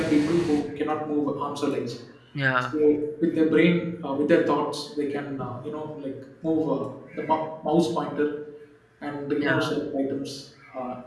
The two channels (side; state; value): both; identical; correlation 1.00